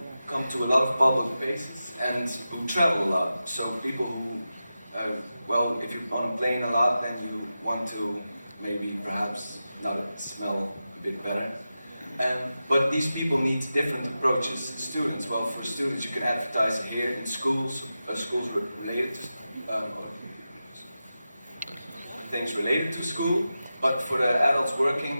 come to a lot of public places, and who travel a lot. So people who, if you're on a plane a lot, then you want to maybe perhaps not smell a bit better. But these people need different approaches. Students, well, for students you can advertise here in schools, schools related to things related to school. But for the adults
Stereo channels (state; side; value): inverted; both; correlation -0.92